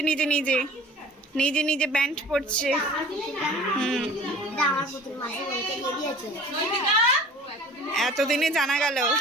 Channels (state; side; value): normal; both; correlation 0.45